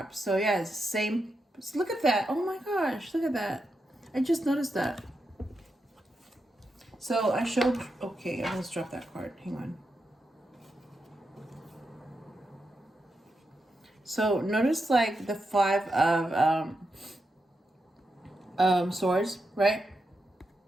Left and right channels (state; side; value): normal; both; correlation 0.86